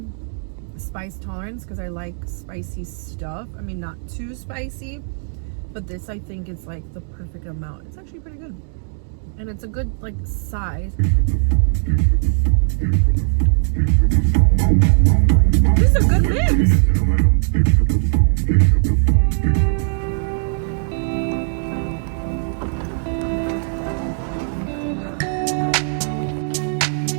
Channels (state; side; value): silent; left; digital silence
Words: spice tolerance because I like spicy stuff. I mean, not too spicy, but this I think is like the perfect amount. It's actually pretty good. And it's a good like size. This is a good mix.